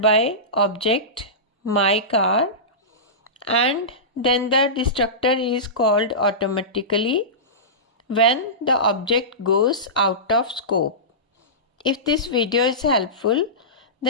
by object my car and then the destructor is called automatically when the object goes out of scope. If this video is helpful,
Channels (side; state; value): both; normal; correlation -0.19